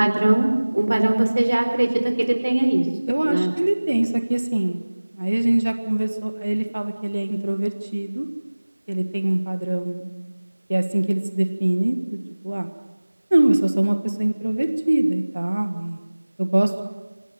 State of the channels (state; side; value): inverted; both; correlation -1.00